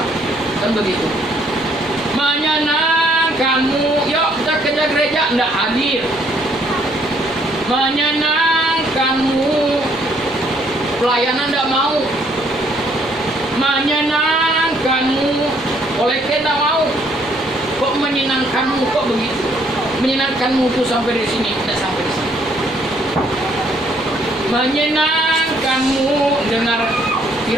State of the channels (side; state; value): both; normal; correlation 0.66